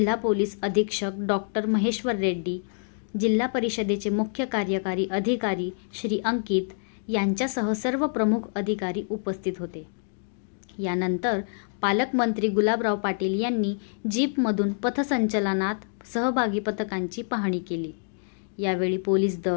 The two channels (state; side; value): silent; right; digital silence